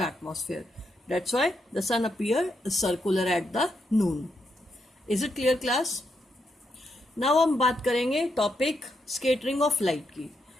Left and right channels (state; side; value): normal; both; correlation 0.81